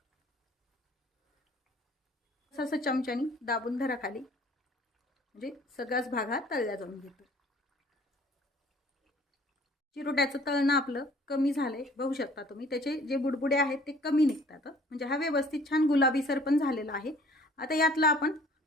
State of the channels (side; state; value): both; normal; correlation 0.54